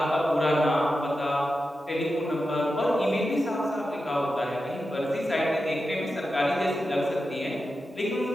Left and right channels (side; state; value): both; normal; correlation 0.91